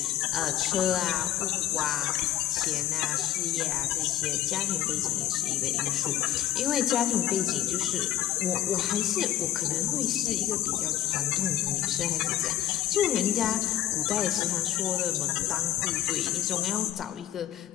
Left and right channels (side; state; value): right; quieter; 12.5 dB